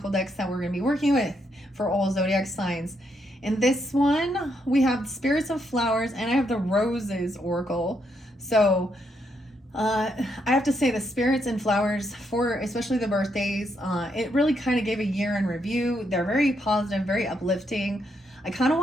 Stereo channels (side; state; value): both; normal; correlation 0.77